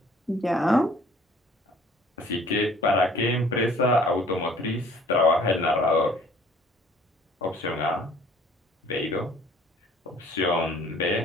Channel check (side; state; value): both; normal; correlation 0.54